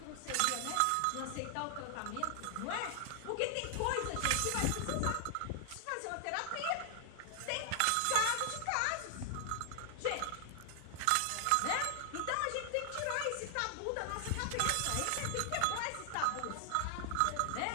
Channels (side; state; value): both; different; correlation 0.00